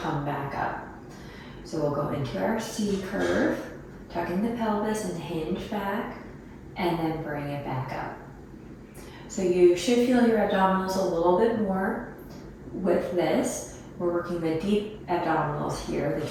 back up. So we'll go into our C curve, tucking the pelvis and hinge back, and then bring it back up. So you should feel your abdominals a little bit more with this. We're working the deep abdominals here, the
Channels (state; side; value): identical; both; correlation 1.00